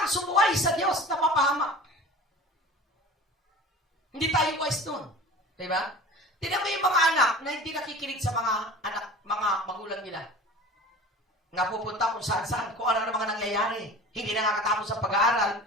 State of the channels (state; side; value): normal; both; correlation 0.39